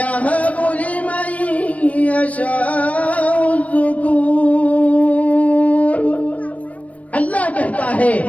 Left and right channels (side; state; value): right; late; 0.068 ms